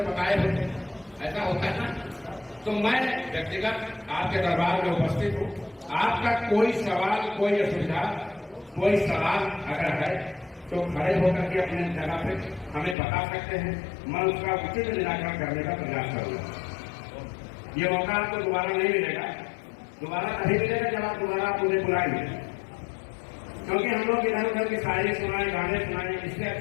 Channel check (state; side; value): drops out; right; at 13.0 s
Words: बताए होते, ऐसा होता है ना। तो मैं व्यक्तिगत आपके दरबार में उपस्थित हूँ, आपका कोई सवाल, कोई असुविधा, कोई सवाल अगर है तो खड़े होकर के अपने जगह पे हमें बता सकते हैं, मैं उसका उचित निराकरण करने का प्रयास करूंगा। ये मौका आपको दोबारा नहीं मिलेगा, दोबारा नहीं मिलेगा जब आप दोबारा मुझे बुलाएंगे, क्योंकि हम लोग इधर उधर की शायरी सुनाए, गाने सुनाए, इससे